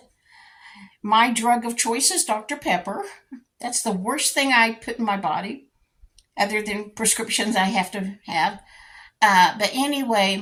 My drug of choice is Dr. Pepper. That's the worst thing I put in my body, other than prescriptions I have to have. But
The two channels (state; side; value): identical; both; correlation 1.00